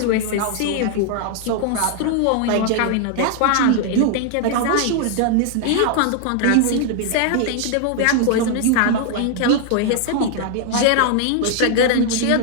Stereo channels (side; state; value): both; different; correlation 0.00